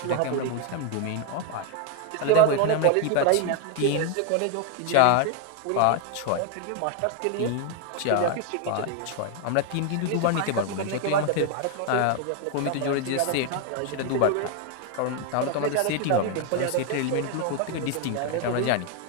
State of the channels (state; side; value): different; both; correlation 0.01